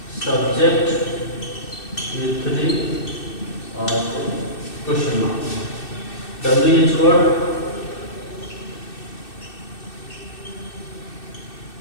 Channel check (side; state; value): right; late; 2.6 ms